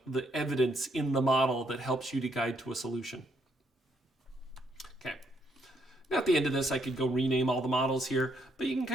the evidence in the model that helps you to guide to a solution. Okay. Now at the end of this, I could go rename all the models here, but you can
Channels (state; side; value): normal; both; correlation 0.73